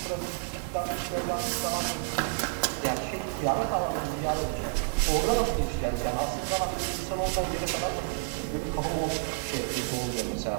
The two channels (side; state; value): left; silent; digital silence